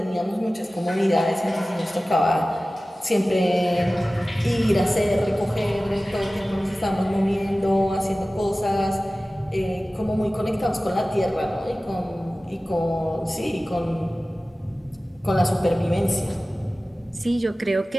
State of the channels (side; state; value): both; normal; correlation 0.96